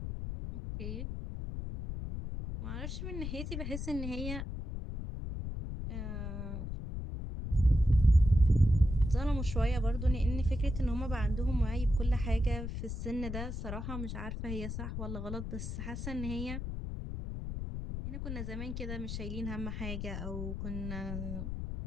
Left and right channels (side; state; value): left; noise; rumble, 5 dB below the sound